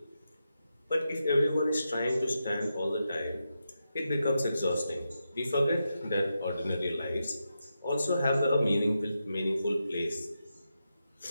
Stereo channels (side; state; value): both; inverted; correlation -0.87